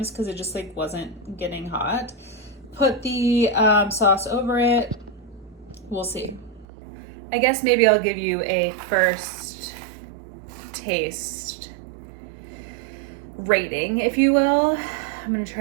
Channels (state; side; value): drops out; left; at 6.7 s